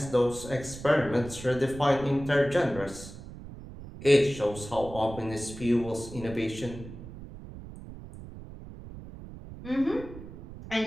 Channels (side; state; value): right; noise; rumble, 14 dB below the sound